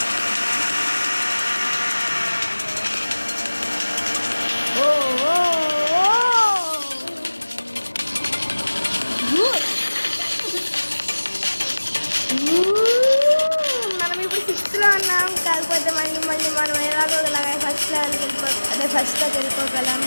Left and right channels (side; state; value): both; inverted; correlation -1.00